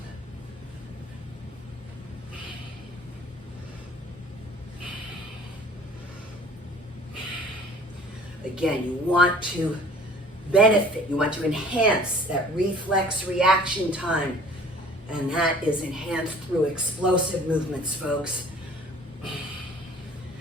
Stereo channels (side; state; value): both; normal; correlation 0.50